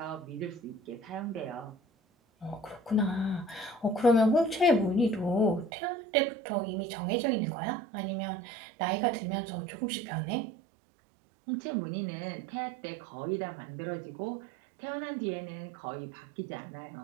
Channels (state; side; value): drops out; left; at 5.7 s